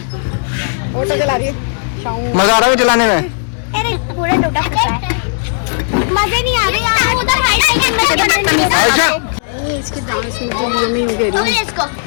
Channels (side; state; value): right; silent; digital silence